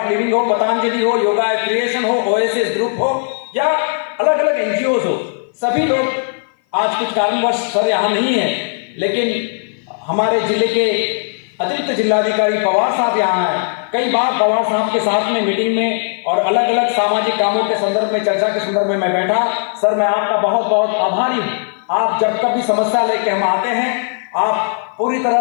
लिविंग हो, पतंजलि हो, योगा क्रिएशन हो, ओएसिस ग्रुप हो या अलग अलग एनजीओ हो, सभी लोग आज कुछ कारणवश सर यहाँ नहीं है, लेकिन हमारे जिले के अतिरिक्त जिलाधिकारी पवार साहब यहाँ हैं। कई बार पवार साहब के साथ में मीटिंग में और अलग अलग सामाजिक कामों के संदर्भ में, चर्चा के संदर्भ में मैं बैठा। सर मैं आपका बहुत बहुत आभारी हूँ। आप जब कभी समस्या लेके हम आते हैं, आप पूरी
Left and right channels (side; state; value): right; silent; 56 dB below the other